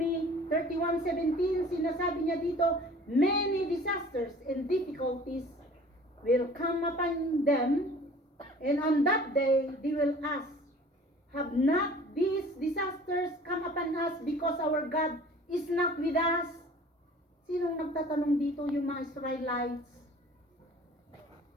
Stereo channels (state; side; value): normal; both; correlation 0.48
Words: 31:17, sinasabi niya dito, many disasters and difficulties will come upon them, and on that day they will ask, have not these disasters come upon us because our God is not with us? Sinong nagtatanong dito? Yung mga Israelites.